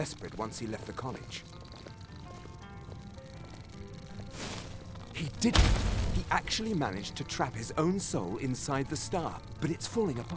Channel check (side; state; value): both; identical; correlation 1.00